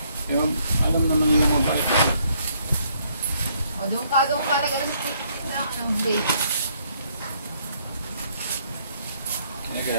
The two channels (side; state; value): both; inverted; correlation -0.69